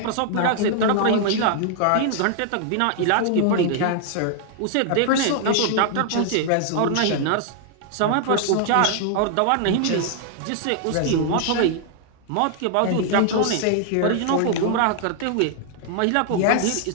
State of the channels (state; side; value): different; both; correlation 0.00